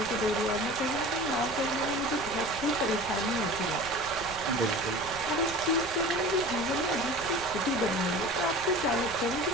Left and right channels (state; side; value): noise; left; rumble, 15 dB below the sound